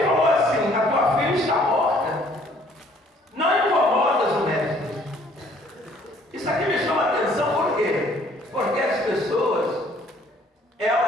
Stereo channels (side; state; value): both; normal; correlation 0.59